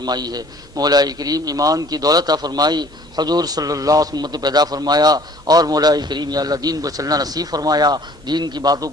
ہے۔ مولا کریم ایمان کی دولت عطا فرمائی، حضور صلی اللہ علیہ وسلم پیدا فرمایا، اور مولا کریم یا اللہ دین پر چلنا نصیب فرمایا، دین کی باتوں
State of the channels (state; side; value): normal; both; correlation 0.53